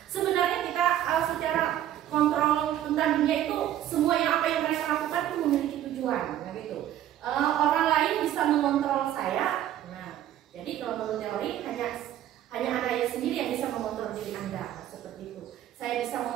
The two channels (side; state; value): left; quieter; 12.0 dB